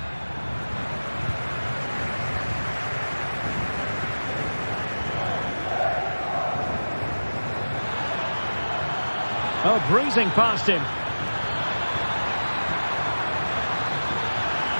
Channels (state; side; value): inverted; both; correlation -1.00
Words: Oh, breezing past him.